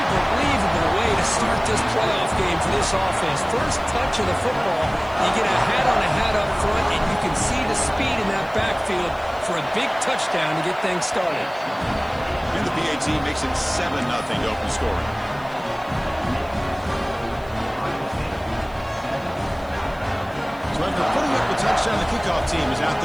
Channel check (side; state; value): right; noise; hiss, 28 dB below the sound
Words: way to start this playoff game for this offense. First touch of the football, you get a hat up front, and you can see the speed in that backfield for a big touchdown to get things started. And the PAT makes it 7-0 to open scoring. So after putting up the touchdown, the kickoff team is out